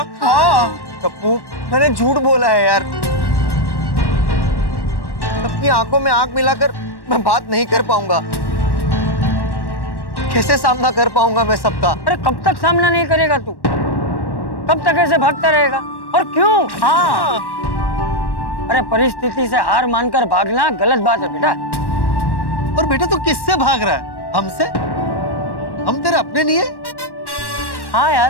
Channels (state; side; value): late; right; 1.1 ms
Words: हाँ टप्पू, मैंने झूठ बोला है यार। सबकी आंखों में आंख मिलाकर मैं बात नहीं कर पाऊंगा। कैसे सामना कर पाऊंगा मैं सबका? अरे कब तक सामना नहीं करेगा तू? कब तक ऐसे भागता रहेगा? और क्यों? हाँ, अरे परिस्थिति से हार मानकर भागना गलत बात है बेटा। और बेटा तू किससे भाग रहा है? हमसे? हम तेरे अपने नहीं है? हाँ